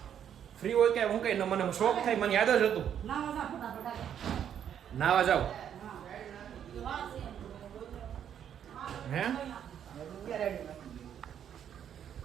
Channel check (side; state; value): left; quieter; 9.2 dB